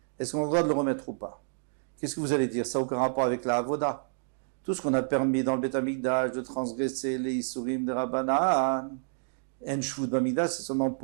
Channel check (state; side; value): silent; left; digital silence